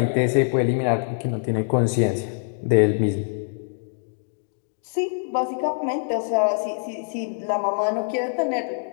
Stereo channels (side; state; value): right; silent; digital silence